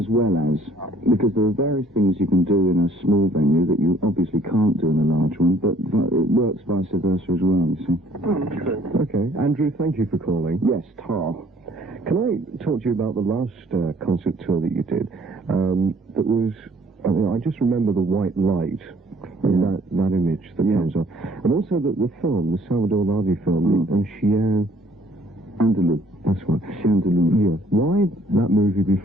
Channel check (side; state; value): both; normal; correlation 0.60